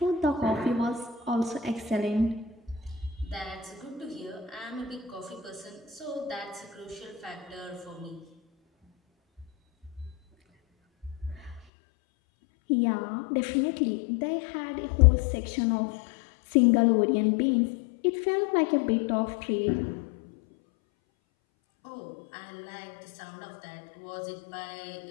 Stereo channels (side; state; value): right; drops out; at 11.7 s